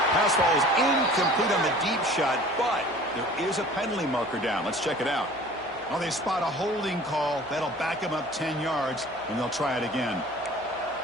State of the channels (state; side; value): noise; right; hum, 26 dB below the sound